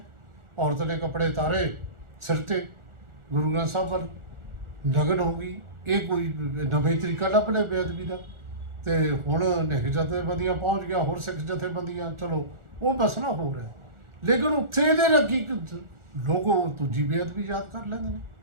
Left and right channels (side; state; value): left; late; 1.4 ms